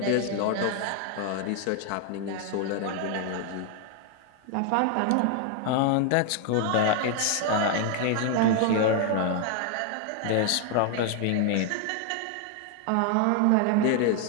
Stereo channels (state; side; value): different; both; correlation 0.00